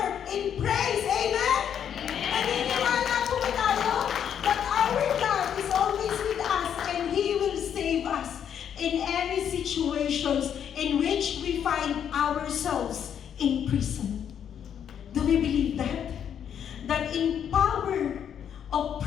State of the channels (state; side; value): quieter; right; 8.8 dB